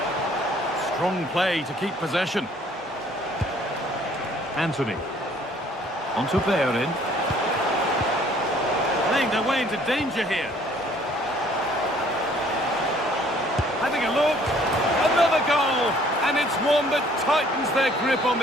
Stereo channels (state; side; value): normal; both; correlation 0.58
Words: Strong play to keep possession. Anthony. On to Bayern. Playing their way into danger here. Having a look. Another goal. And it's one that tightens their grip on